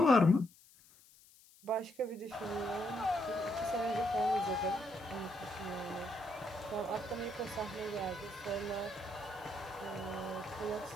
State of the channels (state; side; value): noise; left; hiss, 25 dB below the sound